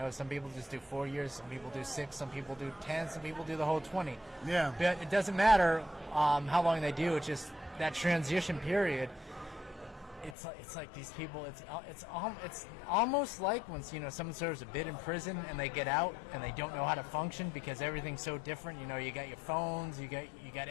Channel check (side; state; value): right; drops out; at 10.4 s